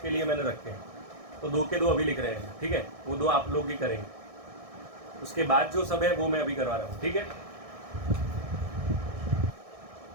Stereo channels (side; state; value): left; late; 1.6 ms